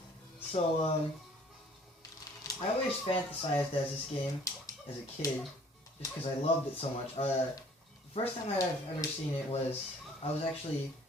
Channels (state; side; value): normal; both; correlation 0.55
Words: So, I always fantasized as this game as a kid, just because I loved it so much. The first time I've ever seen it was, I was actually,